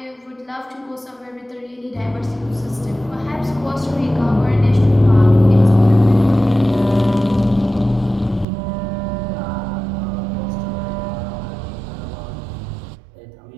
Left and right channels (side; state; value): left; drops out; at 8.5 s